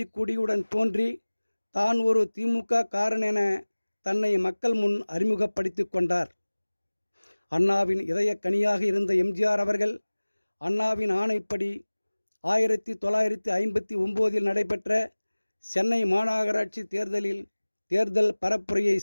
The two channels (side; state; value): both; inverted; correlation -1.00